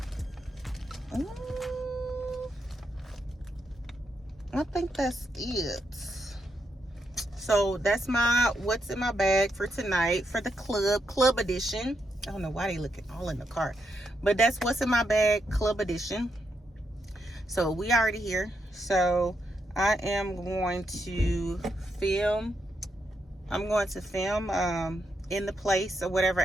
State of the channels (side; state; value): both; normal; correlation 0.81